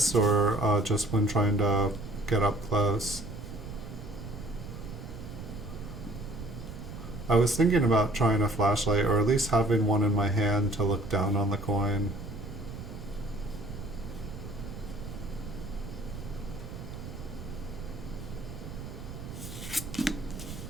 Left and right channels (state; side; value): noise; right; rumble, 10 dB below the sound